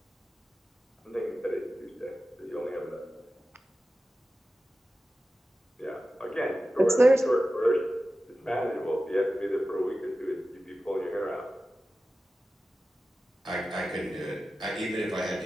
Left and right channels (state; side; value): normal; both; correlation 0.94